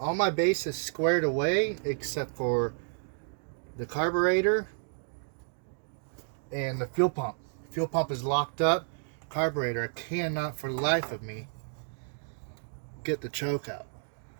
my bases squared away except for the carburetor and the fuel pump. Fuel pump is locked up. Carburetor, I cannot for the life of me get the choke out.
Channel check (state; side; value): silent; left; digital silence